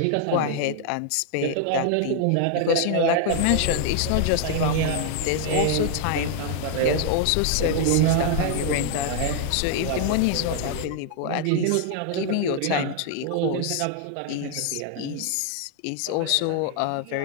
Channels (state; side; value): different; both; correlation 0.00